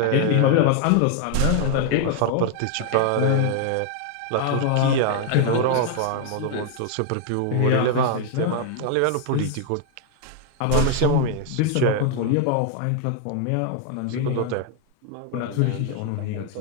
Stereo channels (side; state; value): both; different; correlation 0.00